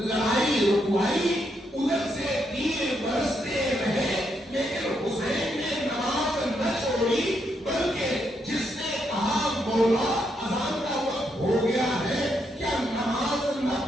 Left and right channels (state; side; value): normal; both; correlation 0.78